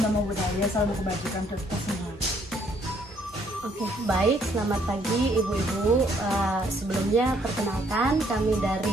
namo buddhaya, salam kebajikan untuk kita semua. Oke, baik. Selamat pagi Ibu-Ibu. Sebelumnya perkenalkan kami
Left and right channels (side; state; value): both; normal; correlation 0.66